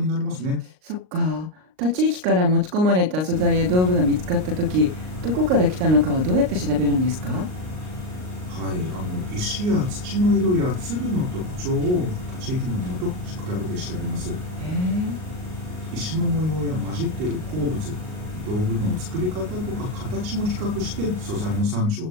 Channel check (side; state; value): left; late; 38 ms